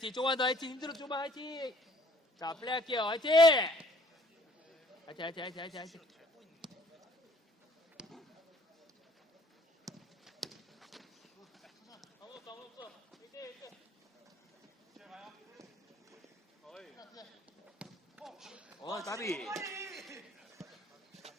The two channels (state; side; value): normal; both; correlation 0.59